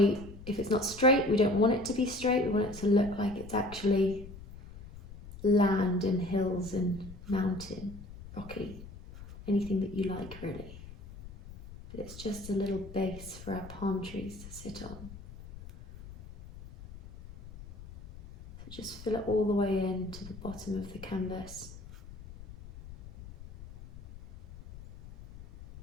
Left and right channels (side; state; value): left; noise; rumble, 15 dB below the sound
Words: if it's not straight. We don't want it to be straight. We want it to look like it's actually land and hills and mountain, rocky, anything that you like really. But it's just a little base for our palm trees to sit on. So just fill it all the way in to the bottom of the canvas.